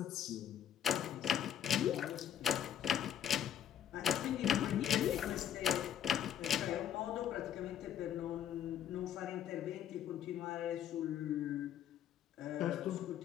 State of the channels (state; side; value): quieter; right; 9.9 dB